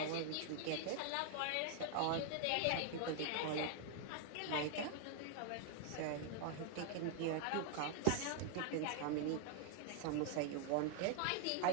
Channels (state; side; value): different; both; correlation 0.00